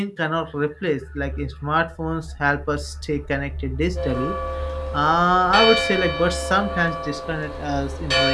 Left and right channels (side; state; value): both; identical; correlation 1.00